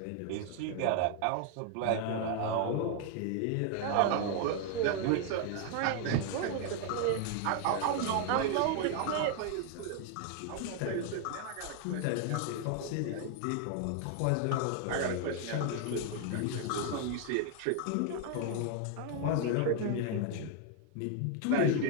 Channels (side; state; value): both; different; correlation 0.00